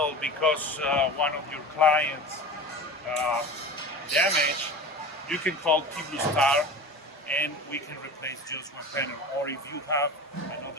because one of your clients damaged, you can call Tblustar and we can replace just one panel. Or if you have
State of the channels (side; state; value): both; normal; correlation 0.33